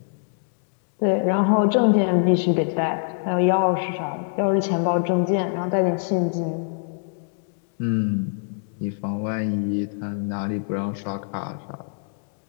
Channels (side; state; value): right; silent; digital silence